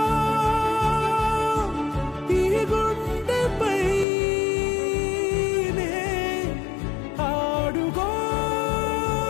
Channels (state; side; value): drops out; right; at 4.0 s